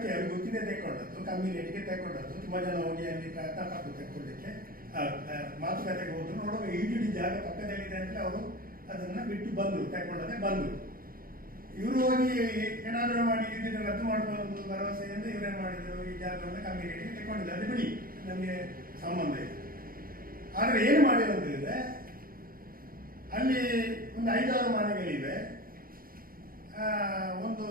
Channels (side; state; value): left; late; 0.42 ms